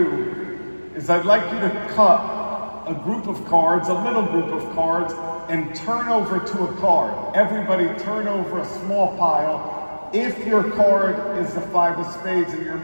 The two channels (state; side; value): inverted; both; correlation -1.00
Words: is I'd like you to cut a group of cards, a little group of cards, and turn over to a card. Everybody turn over a small pile, If your card is the 5 of spades and you're